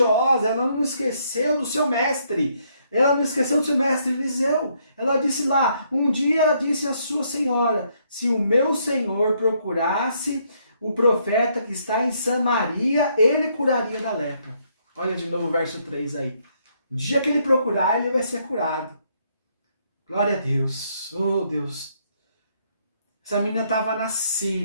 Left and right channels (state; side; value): inverted; both; correlation -0.71